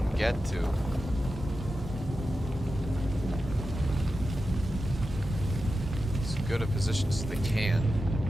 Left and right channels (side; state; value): both; normal; correlation 0.91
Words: get to. As good a position as they can.